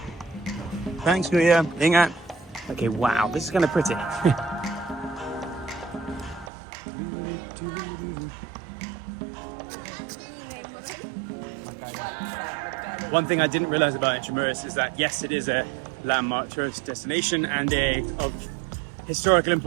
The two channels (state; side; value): drops out; left; at 6.5 s